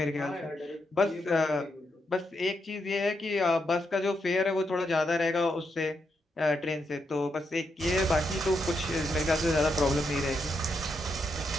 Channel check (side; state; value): both; normal; correlation 0.82